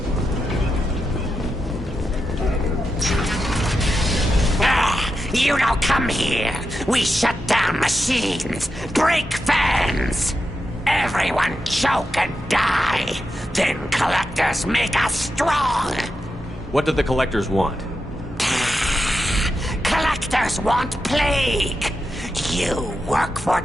You don't come here. We shut down machines, break fans. Everyone choke and die. Then collectors make us strong. What do the collectors want? Collectors want plague. You work for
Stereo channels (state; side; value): normal; both; correlation 0.88